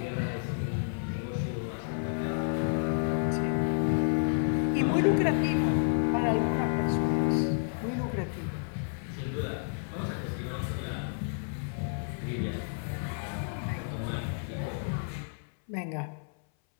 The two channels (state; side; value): silent; right; 57 dB below the other